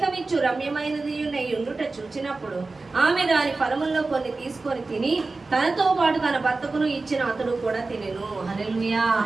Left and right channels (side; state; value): left; quieter; 3.6 dB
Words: రమ్యమైనది ఉండుట చూచినప్పుడు ఆమె దాని ఫలముల్లో కొన్ని తీసుకొని తిని తనతో పాటు తన భర్తకును ఇచ్చిన అతడు కూడా తినెను. హల్లెలూయా.